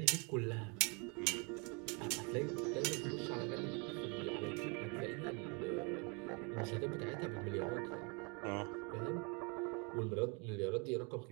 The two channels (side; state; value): left; quieter; 32.8 dB